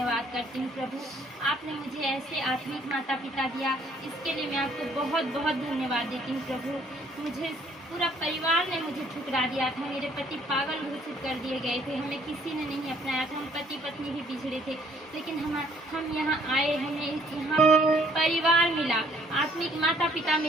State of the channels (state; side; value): normal; both; correlation 0.62